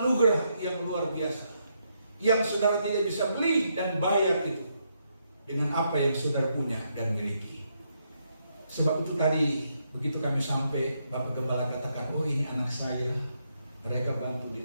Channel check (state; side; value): inverted; both; correlation -0.78